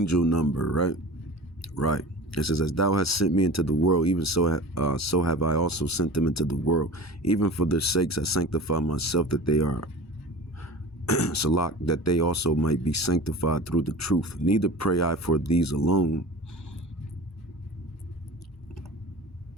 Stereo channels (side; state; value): both; normal; correlation 0.37